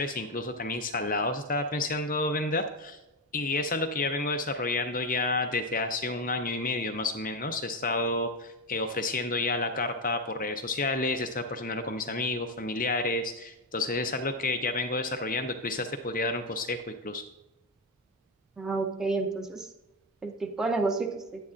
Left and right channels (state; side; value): normal; both; correlation 0.12